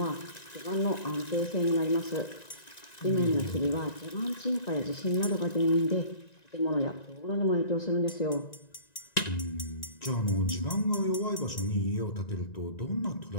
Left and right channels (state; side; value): late; right; 1.9 ms